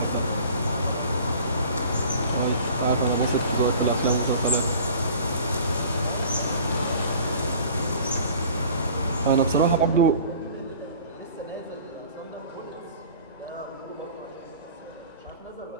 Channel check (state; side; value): inverted; both; correlation -0.46